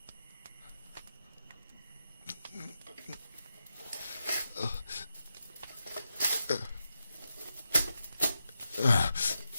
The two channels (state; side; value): inverted; both; correlation -0.88